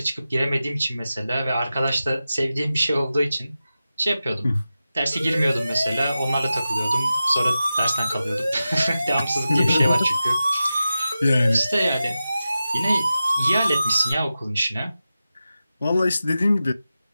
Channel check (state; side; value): inverted; both; correlation -0.93